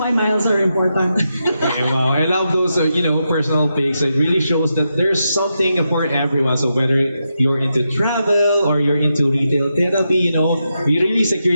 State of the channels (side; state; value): both; inverted; correlation -0.86